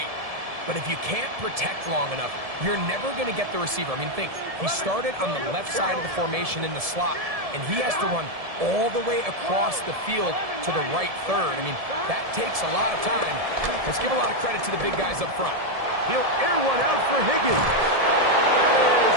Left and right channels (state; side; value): late; left; 1.7 ms